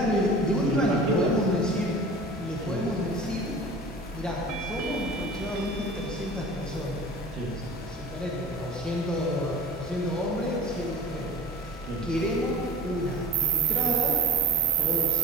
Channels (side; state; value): both; normal; correlation 0.40